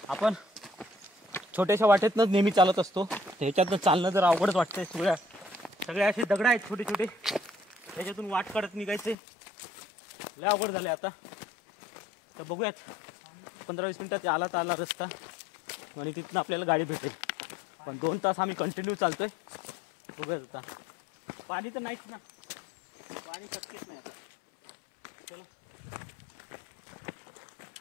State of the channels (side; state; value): right; drops out; at 9.2 s